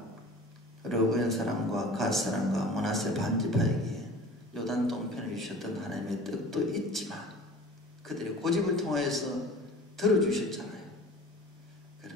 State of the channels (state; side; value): normal; both; correlation 0.42